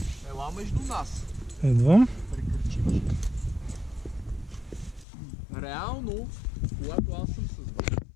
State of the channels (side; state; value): right; drops out; at 5.1 s